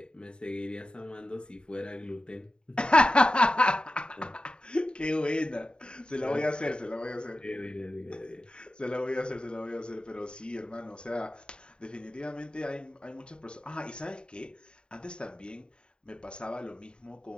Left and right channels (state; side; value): late; right; 0.050 ms